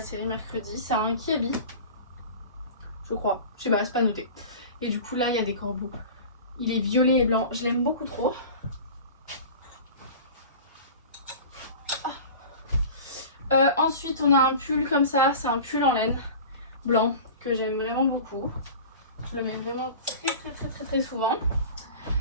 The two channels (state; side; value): inverted; both; correlation -0.37